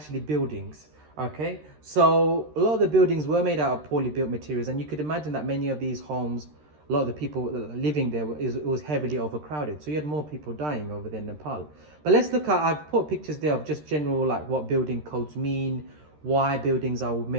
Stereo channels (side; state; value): left; late; 13 ms